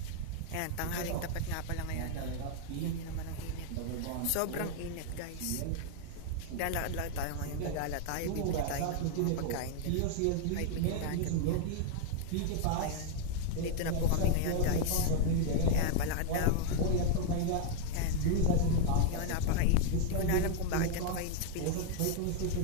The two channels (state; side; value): different; both; correlation 0.00